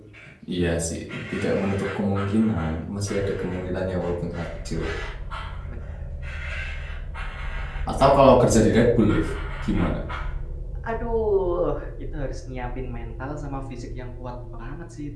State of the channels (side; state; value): both; identical; correlation 1.00